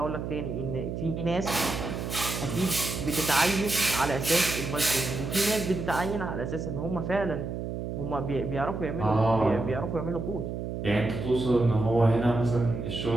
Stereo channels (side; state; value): right; noise; hum, 5 dB below the sound